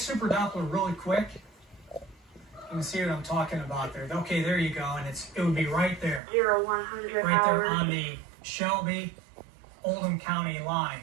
Doppler really quick. You can see what I'm talking about there. Okay, there you go, and it would be right there. 0100 right there on the Shelby Oldham County line,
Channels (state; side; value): drops out; left; at 6.2 s